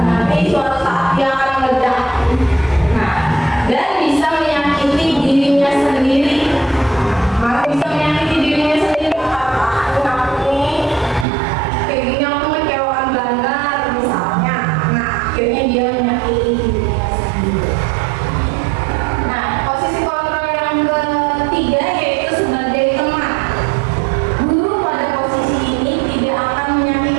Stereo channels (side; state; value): left; drops out; at 11.2 s